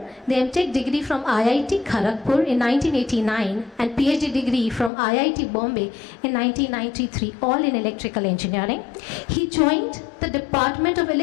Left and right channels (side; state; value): right; drops out; at 4.9 s